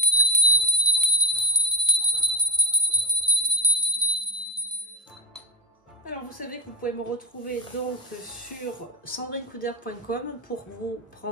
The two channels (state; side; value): normal; both; correlation -0.02